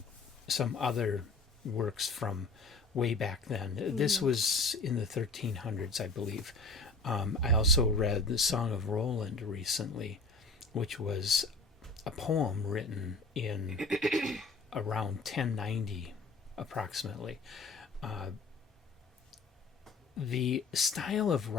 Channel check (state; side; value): quieter; right; 3.5 dB